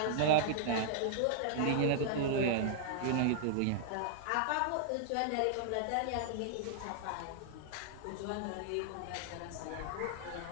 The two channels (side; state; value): both; different; correlation -0.01